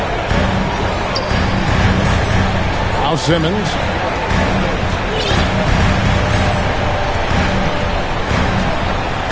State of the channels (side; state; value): both; identical; correlation 1.00